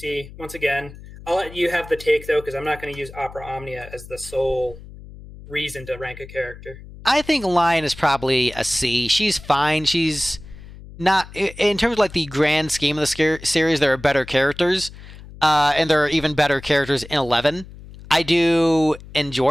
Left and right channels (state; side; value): noise; left; hum, 17 dB below the sound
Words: Once again, I'll let you have the take, though, because I'm not going to use Opera Omnia as the sole reason to rank a character. I think Lion is probably a C. She's fine. She's not... In terms of like the grand scheme of the series, there are better characters, and there are even better characters in 11. I do